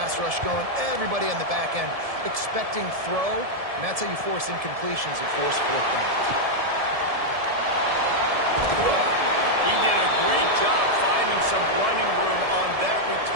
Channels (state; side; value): late; left; 1.7 ms